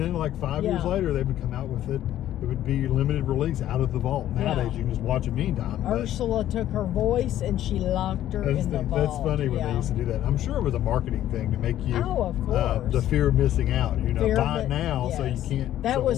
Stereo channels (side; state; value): right; quieter; 12.4 dB